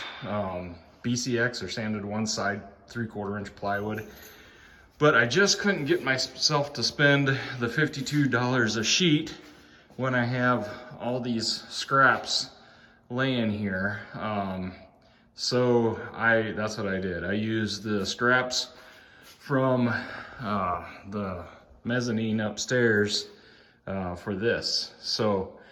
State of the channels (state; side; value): identical; both; correlation 1.00